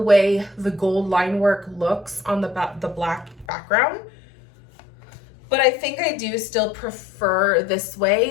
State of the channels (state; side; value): drops out; right; at 3.5 s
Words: way the gold line work looks on the black background. But I think I do still prefer this